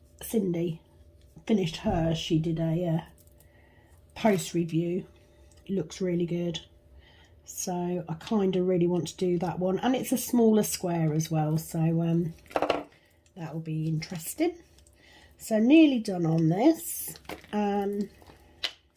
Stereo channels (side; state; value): both; identical; correlation 1.00